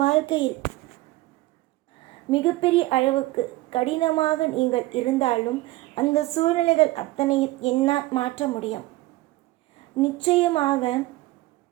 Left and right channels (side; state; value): left; quieter; 18.7 dB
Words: மிகப்பெரிய அளவுக்கு கடினமாக நீங்கள் இருந்தாலும், அந்த சூழ்நிலைகள் அத்தனையும் என்னால் மாற்ற முடியும். நிச்சயமாக